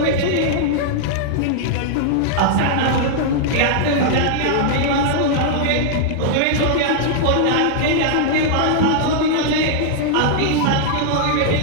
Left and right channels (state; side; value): different; both; correlation -0.01